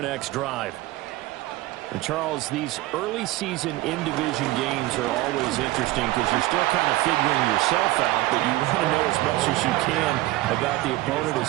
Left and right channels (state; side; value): quieter; left; 18.0 dB